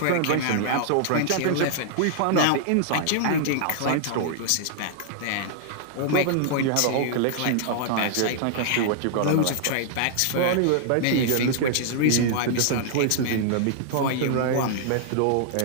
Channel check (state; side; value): different; both; correlation -0.01